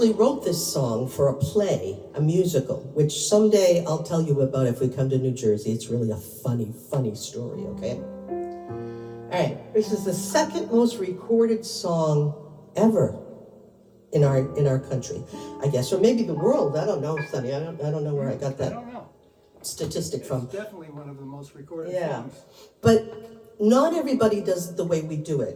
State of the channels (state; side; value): identical; both; correlation 1.00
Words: wrote this song for a play, a musical, which someday I'll tell you about if we come to New Jersey. It's really a funny, funny story, okay? All right, this is the second most recorded song ever in our country, I guess, or maybe the world. I don't know, Sonny. I don't know where I got I that don't know. statistic from. It's definitely one of the most recorded Yeah, songs. but not everybody does it the way we do